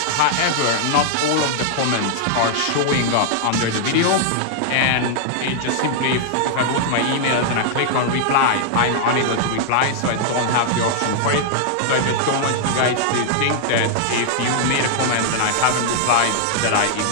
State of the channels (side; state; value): both; different; correlation -0.01